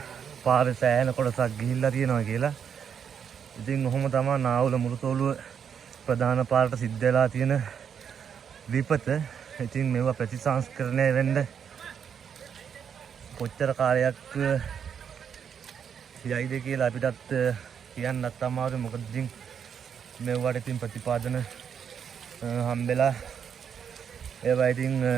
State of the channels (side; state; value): left; quieter; 7.6 dB